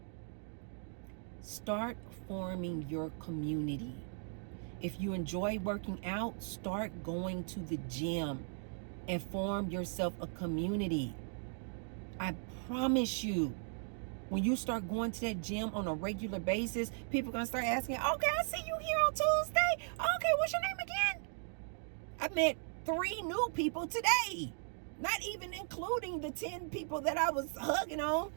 Start forming your community. If you enjoy working out, start going to the gym and form yourself a community. I promise you, when you start going to that gym on a regular basis, people are going to start asking, okay, I see you here on Tuesday. Okay, what's your name again? I met 3 new people today, not even including the 10 people that I was hugging on.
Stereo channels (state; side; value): silent; left; 53 dB below the other